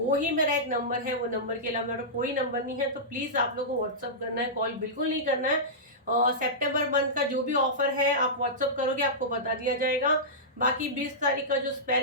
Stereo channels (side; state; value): both; normal; correlation -0.15